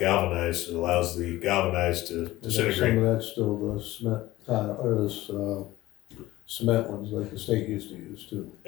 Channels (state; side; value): quieter; right; 17.0 dB